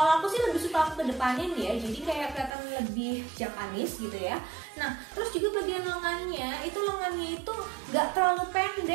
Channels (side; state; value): left; drops out; at 2.5 s